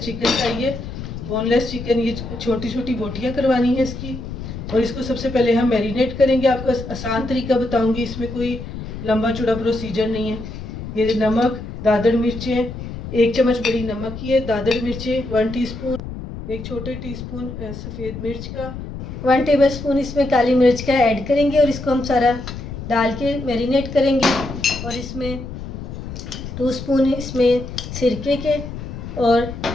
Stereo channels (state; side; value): noise; left; rumble, 9 dB below the sound